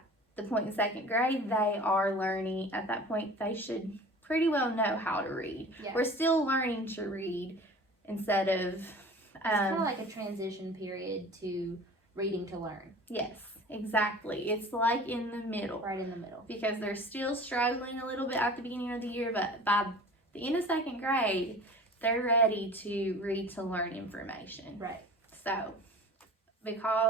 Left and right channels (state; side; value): normal; both; correlation 0.41